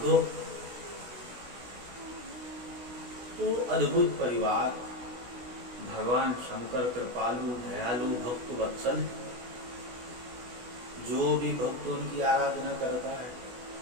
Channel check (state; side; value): late; left; 16 ms